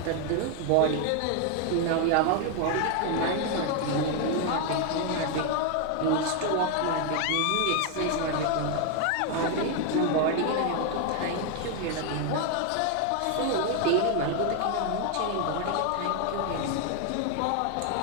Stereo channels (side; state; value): both; different; correlation 0.01